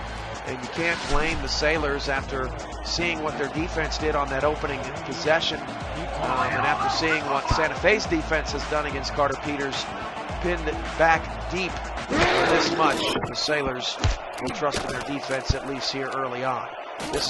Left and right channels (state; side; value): identical; both; correlation 1.00